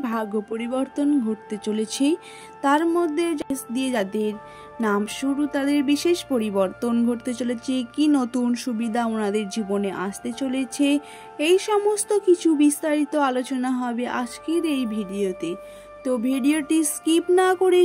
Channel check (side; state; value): both; identical; correlation 1.00